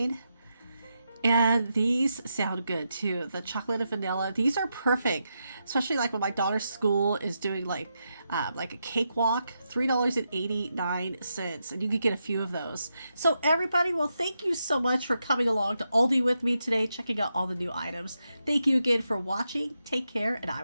And these sound good too. The chocolate and vanilla, these are perfect, especially like when my daughter's school is doing like a cakewalk, $3.89, and you could get a few of those. So everybody, well, thank you so much for coming along to Aldi with me today, checking out all the new items. Thank you again for watching. Take care, and I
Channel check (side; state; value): both; inverted; correlation -0.85